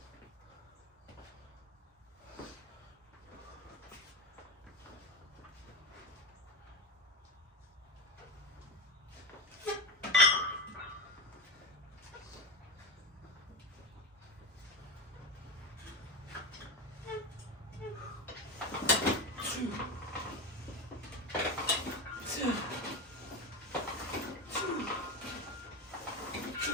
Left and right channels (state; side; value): normal; both; correlation 0.18